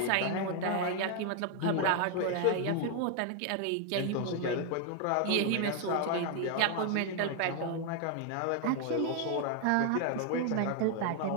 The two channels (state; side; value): different; both; correlation 0.00